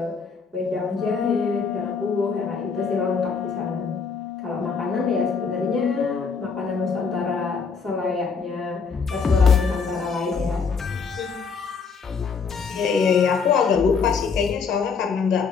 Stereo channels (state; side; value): quieter; right; 5.4 dB